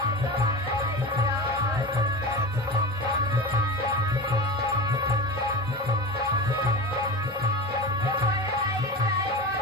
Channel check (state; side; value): normal; both; correlation 0.28